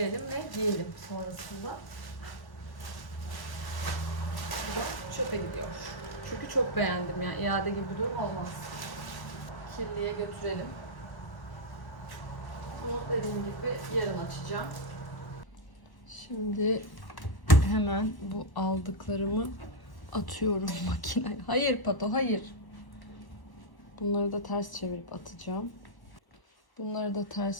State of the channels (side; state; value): right; late; 1.1 ms